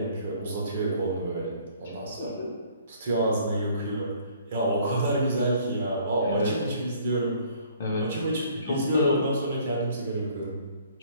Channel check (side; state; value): both; inverted; correlation -0.57